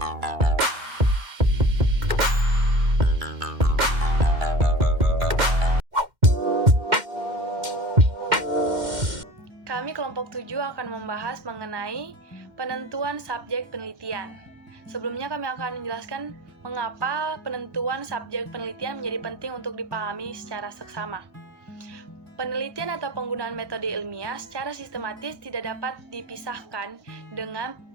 kelompok 7 akan membahas mengenai penentuan subjek penelitian. Sebelumnya kami akan menjelaskan mengapa penentuan subjek penelitian menjadi penting untuk dipahami secara seksama. Penelitian atau penggunaan metode ilmiah secara sistematis tidak dapat dipisahkan dengan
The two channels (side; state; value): left; late; 2.1 ms